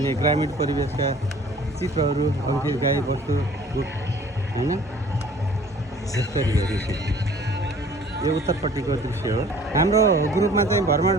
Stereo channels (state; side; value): normal; both; correlation 0.51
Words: ग्रामीण परिवेशका चित्रहरू, अरू केही गाई बस्तु हैन यसरी हेर्नुहोस्। यो उत्तरपट्टिको दृश्य हो। हाम्रो ग्रुपमा चाहिँ